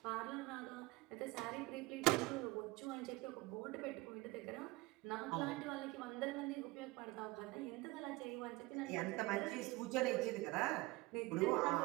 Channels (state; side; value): quieter; left; 21.8 dB